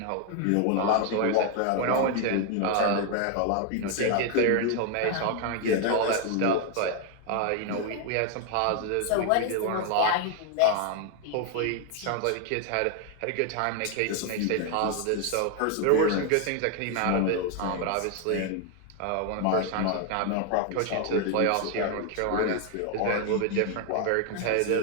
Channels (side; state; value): both; different; correlation 0.01